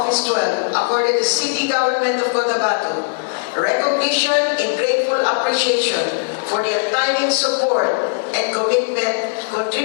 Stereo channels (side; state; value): right; silent; 66 dB below the other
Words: 12 accorded the City Government of Cotabato recognition and grateful appreciation for their untiring support and commitment,